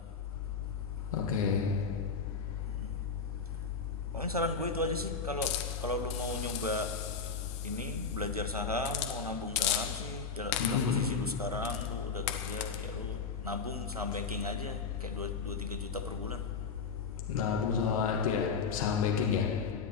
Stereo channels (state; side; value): quieter; right; 5.4 dB